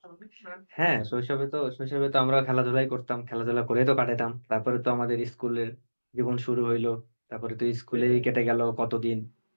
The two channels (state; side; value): inverted; both; correlation -1.00